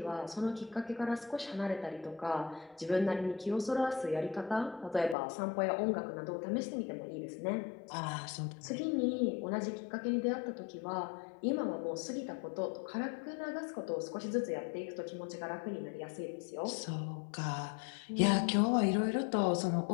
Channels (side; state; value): right; drops out; at 5.2 s